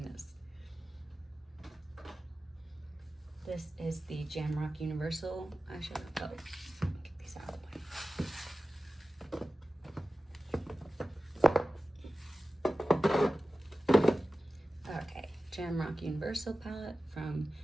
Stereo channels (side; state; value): both; normal; correlation 0.95